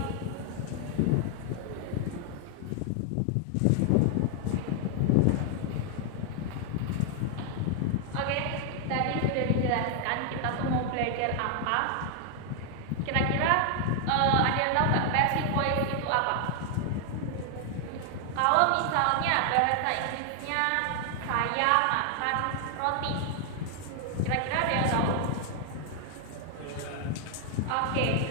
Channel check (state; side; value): different; both; correlation 0.00